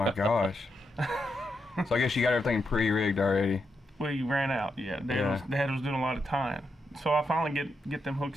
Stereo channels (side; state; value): both; normal; correlation 0.84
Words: gosh. So I guess you got everything pre-rigged already. We ran out. Yeah, Dad was doing a lot of tying. So I finally get them